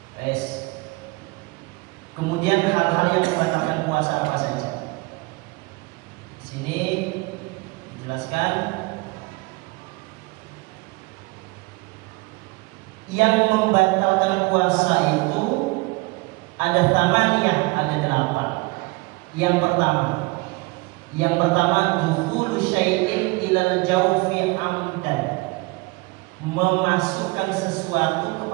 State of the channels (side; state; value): left; quieter; 24.7 dB